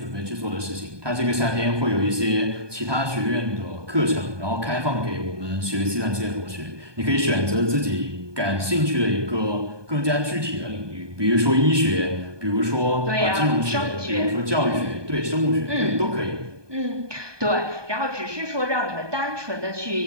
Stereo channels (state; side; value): late; left; 1.2 ms